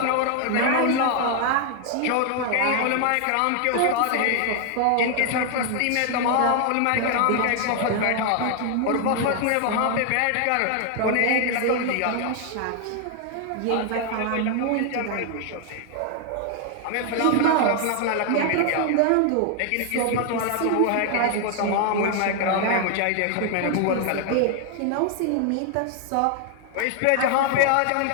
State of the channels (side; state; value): both; different; correlation 0.00